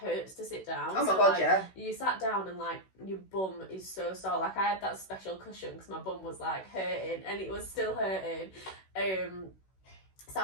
to sit down. Oh my god, like, you sat down and like your bum is so sore. Like I had that special cushion because my bum was like hurting, and it was still hurting. So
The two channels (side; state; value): right; late; 16 ms